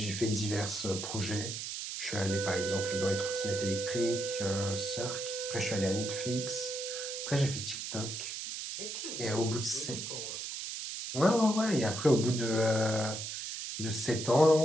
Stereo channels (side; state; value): right; noise; hiss, 6 dB below the sound